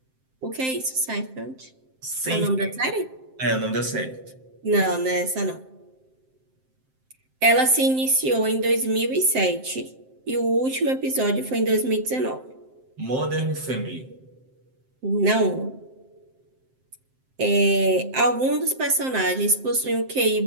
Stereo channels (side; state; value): left; late; 7.7 ms